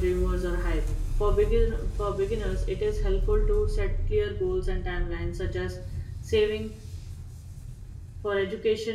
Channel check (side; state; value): both; identical; correlation 1.00